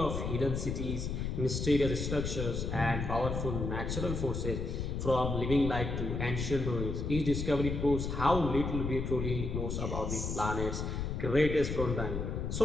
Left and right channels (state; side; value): noise; left; rumble, 3 dB below the sound